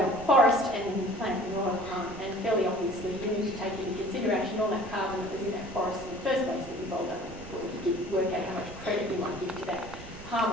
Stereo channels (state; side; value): noise; right; rumble, 15 dB below the sound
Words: forest and then you plant manure. And fairly obviously you need to take into consideration all that carbon that was in that forest in the first place that you rolled up before you work out how much credit you might give to that